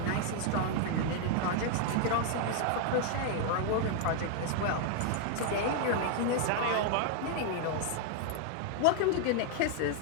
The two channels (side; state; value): both; different; correlation 0.00